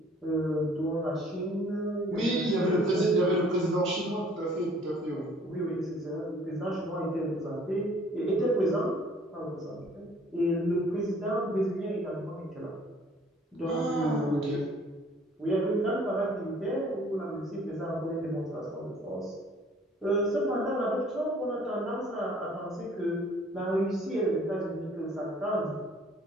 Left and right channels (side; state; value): both; normal; correlation 0.56